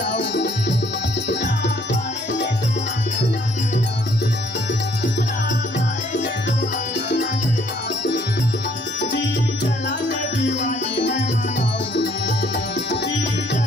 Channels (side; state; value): both; normal; correlation 0.64